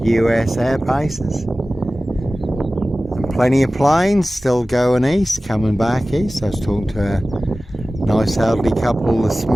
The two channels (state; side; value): normal; both; correlation 0.97